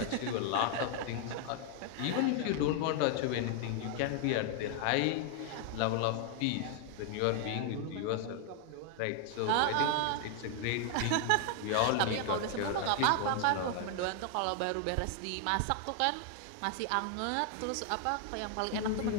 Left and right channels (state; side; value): different; both; correlation 0.00